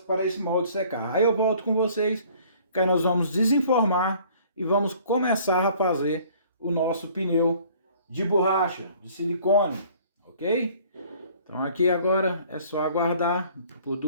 esse molde secar. Aí eu volto com vocês, que aí nós vamos desenformar e vamos começar a fazer o nosso pneu de borracha, de silicone, ok? Então aqui agora é só aguardar por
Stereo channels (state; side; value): inverted; both; correlation -0.55